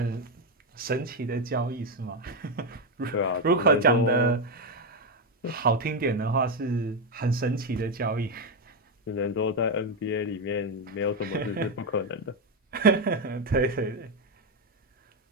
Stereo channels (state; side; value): normal; both; correlation 0.06